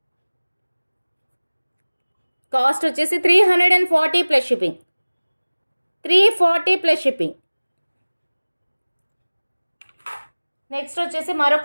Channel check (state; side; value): inverted; both; correlation -1.00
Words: కాస్ట్ వచ్చేసి 340 plus shipping. 340 plus shipping. Next వచ్చేసి